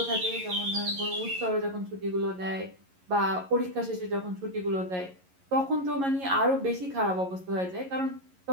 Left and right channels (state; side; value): late; left; 11 ms